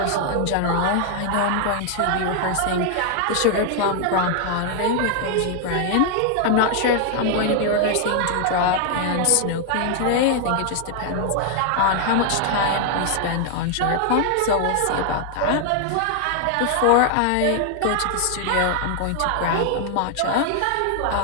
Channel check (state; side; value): different; both; correlation 0.00